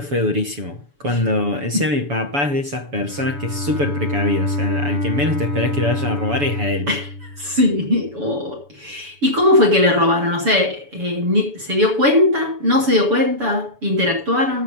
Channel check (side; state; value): left; late; 7.0 ms